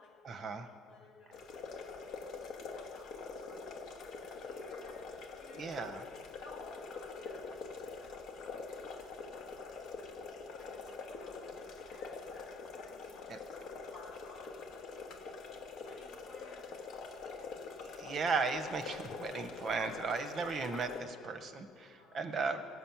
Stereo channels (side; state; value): both; normal; correlation 0.62